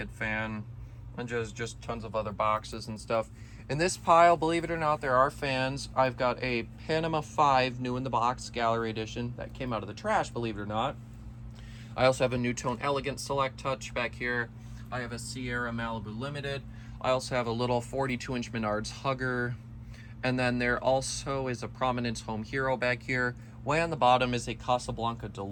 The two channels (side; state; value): both; identical; correlation 1.00